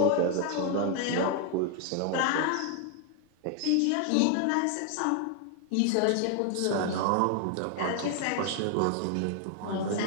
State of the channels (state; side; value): different; both; correlation 0.00